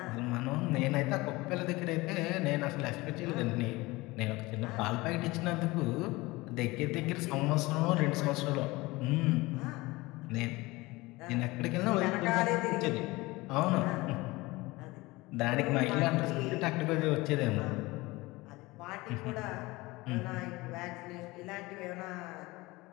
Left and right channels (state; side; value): quieter; right; 21.6 dB